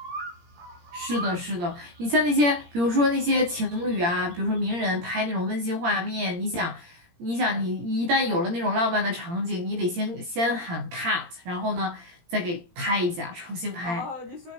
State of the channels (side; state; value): left; late; 17 ms